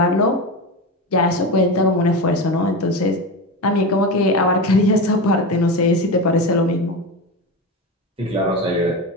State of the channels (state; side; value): normal; both; correlation 0.21